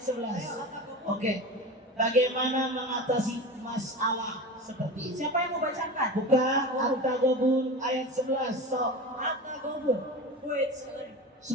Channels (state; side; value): normal; both; correlation 0.29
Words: Oke. Bagaimana mengatasi masalah seperti ini? Siapa yang mau bacakan? Buka At-Taghabun ayat 11. Sok. Atta Kobus. Wait,